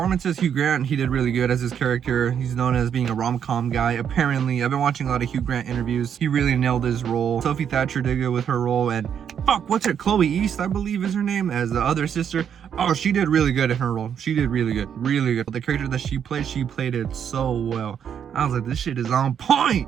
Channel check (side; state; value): left; quieter; 8.3 dB